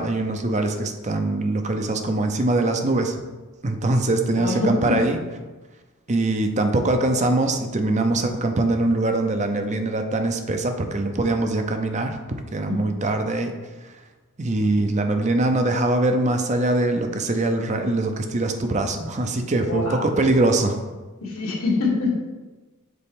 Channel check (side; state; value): both; normal; correlation 0.56